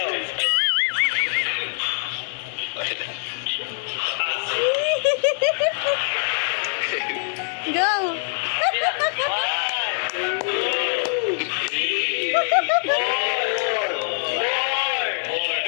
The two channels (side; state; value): right; silent; digital silence